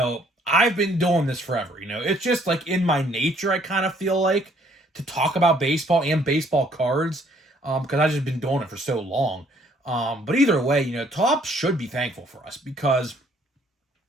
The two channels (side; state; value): both; normal; correlation 0.63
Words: I've been doing this forever. It's just like in my nature, I kind of feel like, to talk about baseball and baseball cards, because I've just been doing it for so long. But either way, Topps should be thankful for us, because